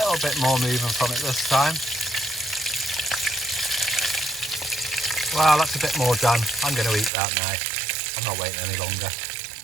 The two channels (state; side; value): drops out; left; at 7.1 s